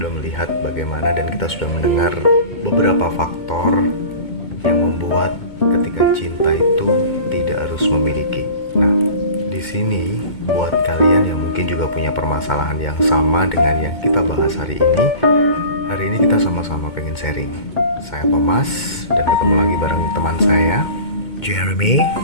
melihat bagaimana dan kita sudah mendengar beberapa faktor yang membuat ketika cinta itu tidak harus memiliki. Nah, di sini buat kalian yang mungkin juga punya permasalahan yang sama dengan yang kita bahas hari ini kita sama-sama pengen sharing. Saya Thomas dan ketemu lagi bareng teman saya Jeremy,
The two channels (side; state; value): right; late; 2.2 ms